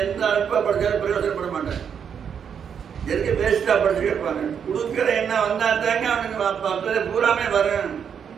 எந்த அல்ப படிச்சாலும் பிரயோஜனப்பட மாட்டேன். எதுக்கு வேஸ்டா படிச்சு கேட்பாங்க. கொடுக்கிற எண்ணம் வந்தா தாங்க அவனுக்கு பூராமே வரும்.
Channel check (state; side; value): quieter; left; 7.6 dB